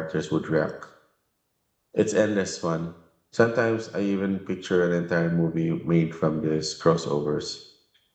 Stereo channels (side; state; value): both; identical; correlation 1.00